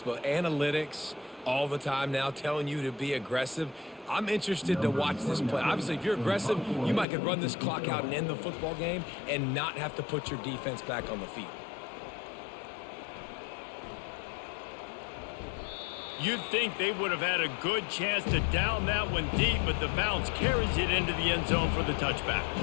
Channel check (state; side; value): drops out; right; at 7.1 s